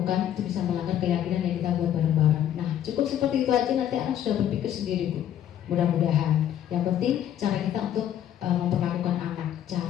itu bisa melanggar keyakinan yang kita buat bareng-bareng. Nah, cukup seperti itu aja, nanti anak sudah berpikir sendiri, Bu. Mudah-mudahan. Yang penting cara kita untuk memperlakukan anak.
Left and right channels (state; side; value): quieter; right; 10.7 dB